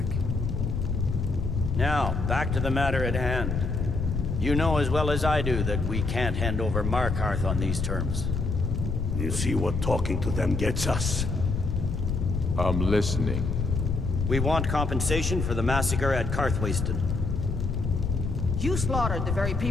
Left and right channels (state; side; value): noise; left; rumble, 1 dB below the sound